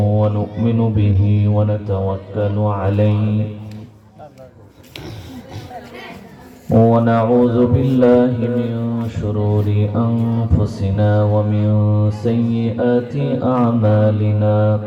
ونؤمن به ونتوكل عليه ونعوذ بالله من شرور أنفسنا ومن سيئات أعمالنا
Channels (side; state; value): both; identical; correlation 1.00